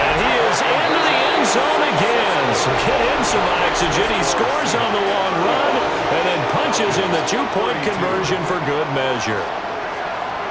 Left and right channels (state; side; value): identical; both; correlation 1.00